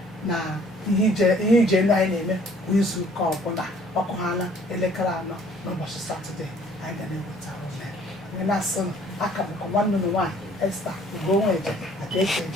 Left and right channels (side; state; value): both; normal; correlation 0.57